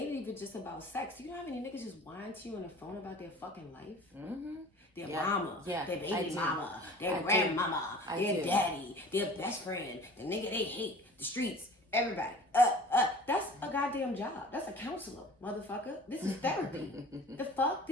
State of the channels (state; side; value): normal; both; correlation 0.44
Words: even just about sex. You know how many niggas just whine to you on the phone about their fucking life? Mm-hmm. Their mama, their baby mama, their grandmama, their daddy, their best friend, the nigga they hate, the streets, everybody. That's a goddamn job. That's a counselor, motherfucker. This is therapy. The fuck?